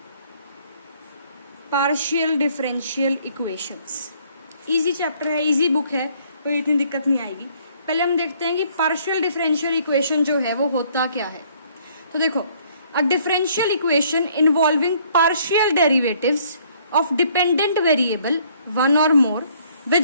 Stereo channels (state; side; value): inverted; both; correlation -0.63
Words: partial differential equations. Easy chapter है, इजी बुक है, कोई इतनी दिक्कत नहीं आएगी। पहले हम देखते हैं कि पार्शियल डिफरेंशियल इक्वेशन जो है वो होता क्या है। तो देखो, a differential equation involving partial derivatives of dependent variable one or more